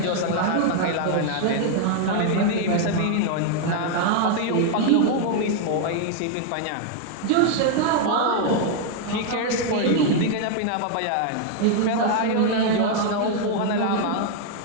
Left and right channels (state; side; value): different; both; correlation 0.00